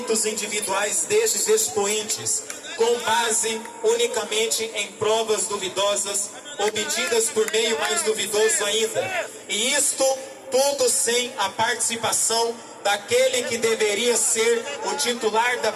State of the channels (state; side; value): identical; both; correlation 1.00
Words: individuais destes expoentes, com base unicamente em provas duvidosas, obtidas por meio mais duvidoso ainda. E isto tudo sem a participação daquele que deveria ser o titular da